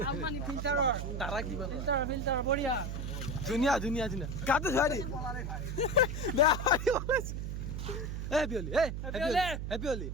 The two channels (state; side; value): noise; right; hum, 4 dB below the sound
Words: ধুনীয়া ধুনীয়া ধুনীয়া গাটো ধুৱাই দি বেয়া হেপী হোলী হেপী হোলী